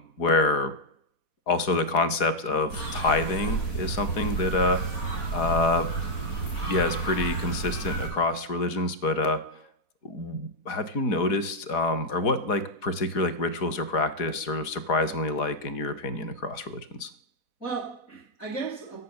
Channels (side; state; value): right; late; 4.1 ms